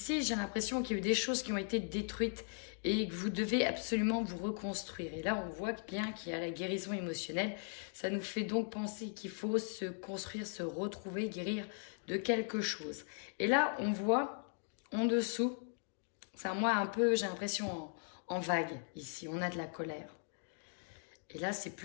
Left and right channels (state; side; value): silent; right; 52 dB below the other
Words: j'ai l'impression qu'il y a eu des choses qui ont été détruites et que vous devez absolument vous reconstruire. Et là, on voit bien qu'il y a la guérison émotionnelle. Ça nous fait donc penser qu'il faut se construire, se retrouver, guérir de quelque chose. Et là, on voit en dessous, c'est moi un peu, j'ai l'impression en vague ici, on a de la colère. Et là, c'est